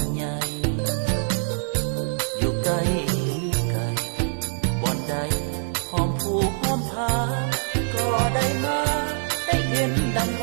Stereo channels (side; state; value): left; silent; 58 dB below the other